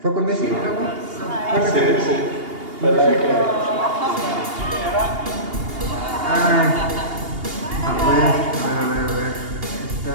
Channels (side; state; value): left; late; 2.8 ms